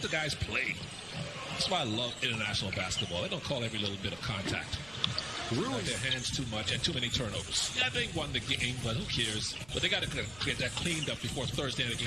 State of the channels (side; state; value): right; noise; rumble, 22 dB below the sound